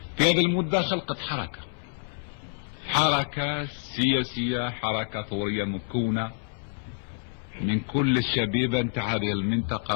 في هذه المدة خلقت حركة سياسية، حركة ثورية مكونة من كل الشبيبة نتاع هذه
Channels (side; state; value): right; silent; 60 dB below the other